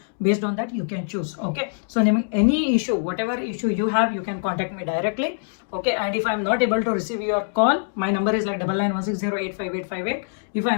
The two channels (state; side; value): silent; right; digital silence